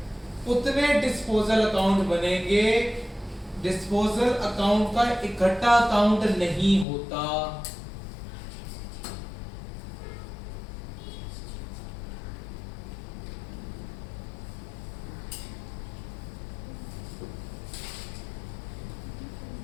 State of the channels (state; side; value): drops out; right; at 6.9 s